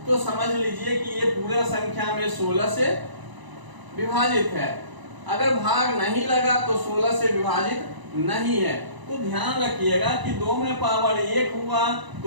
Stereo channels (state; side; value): late; left; 1.0 ms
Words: तो समझ लीजिए कि ये पूरा संख्या में 16 से विभाजित है। अगर भाग नहीं लगा तो 16 से विभाजित नहीं है। तो ध्यान रखिएगा कि 2 में पावर 1 हुआ